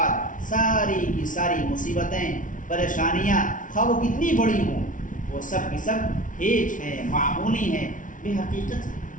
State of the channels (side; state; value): right; late; 0.38 ms